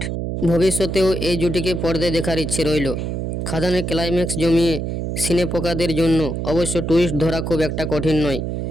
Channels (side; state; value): right; noise; hum, 3 dB below the sound